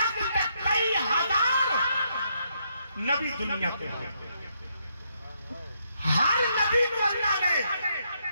تک کئی ہزار نبی دنیا کے ہیں ہر نبی کو اللہ نے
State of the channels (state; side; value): inverted; both; correlation -0.76